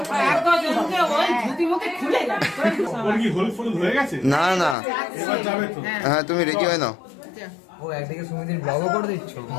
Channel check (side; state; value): right; drops out; at 4.8 s